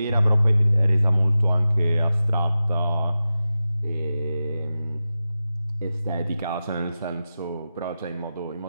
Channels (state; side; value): inverted; both; correlation -0.93